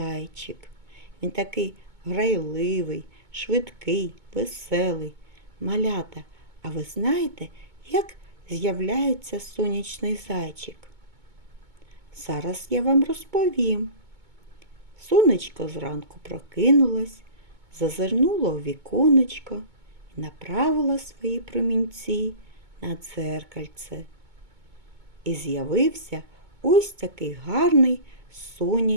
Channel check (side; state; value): left; late; 2.2 ms